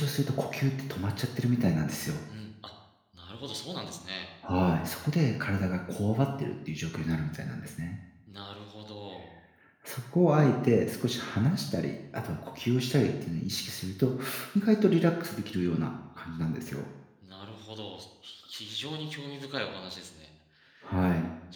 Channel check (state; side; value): identical; both; correlation 1.00